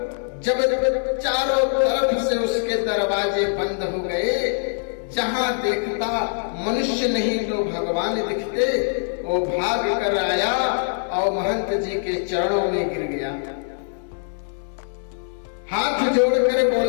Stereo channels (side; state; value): right; silent; digital silence